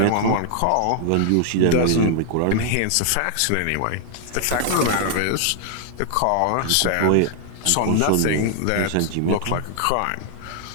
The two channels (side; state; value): both; different; correlation 0.00